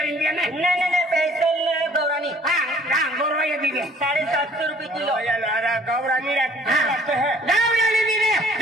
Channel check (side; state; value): both; normal; correlation 0.55